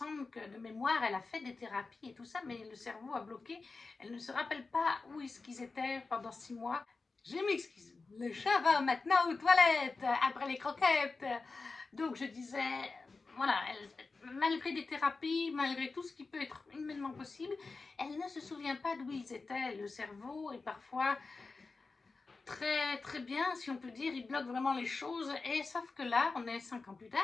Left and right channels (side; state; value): right; quieter; 4.0 dB